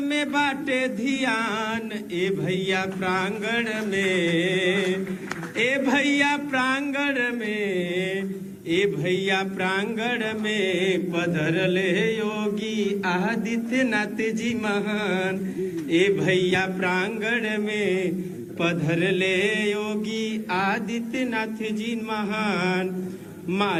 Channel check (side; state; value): both; identical; correlation 1.00